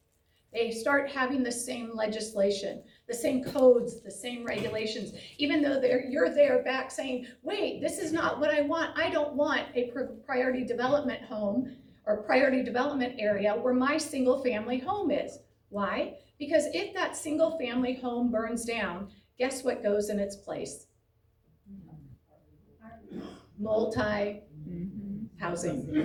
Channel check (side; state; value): both; identical; correlation 1.00